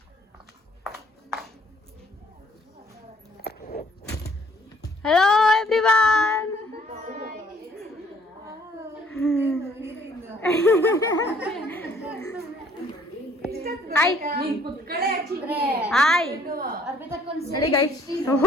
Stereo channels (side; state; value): both; normal; correlation 0.60